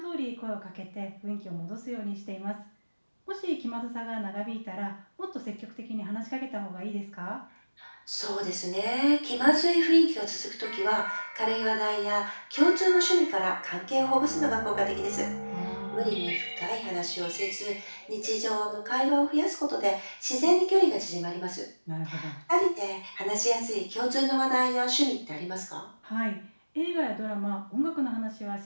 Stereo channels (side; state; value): both; inverted; correlation -1.00